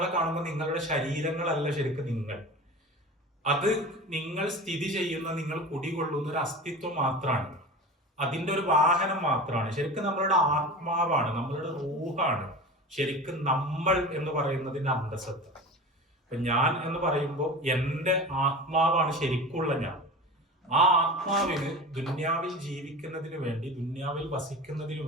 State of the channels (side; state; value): both; normal; correlation 0.33